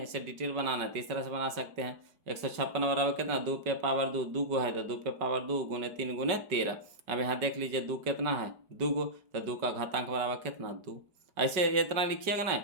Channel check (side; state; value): left; late; 5.3 ms